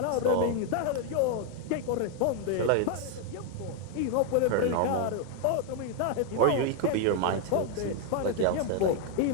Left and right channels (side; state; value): both; different; correlation 0.00